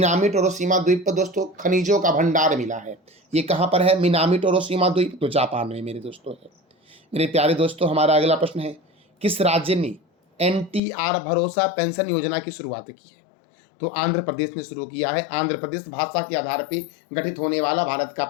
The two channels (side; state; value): right; drops out; at 10.8 s